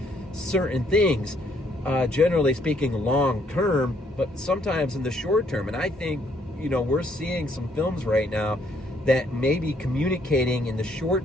certain things, generally speaking, long term, but sometimes in the short term. And I think, we're seeing some films right now that may be communicating in the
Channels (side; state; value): both; normal; correlation 0.68